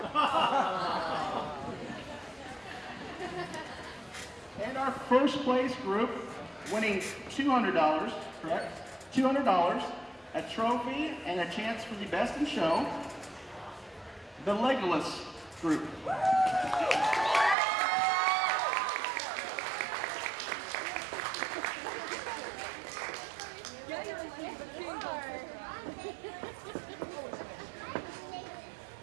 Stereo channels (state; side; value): drops out; left; at 17.6 s